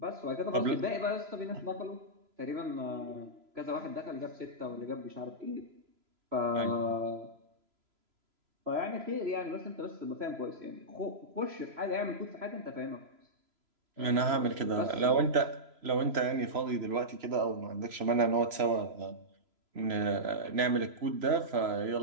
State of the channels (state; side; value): late; left; 3.0 ms